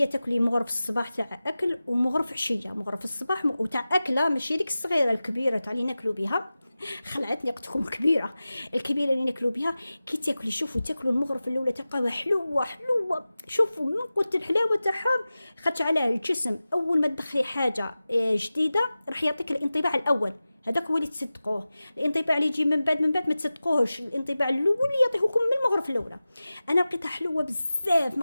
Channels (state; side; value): inverted; both; correlation -0.96